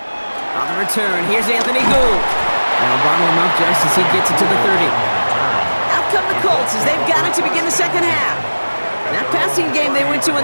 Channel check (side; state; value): both; inverted; correlation -1.00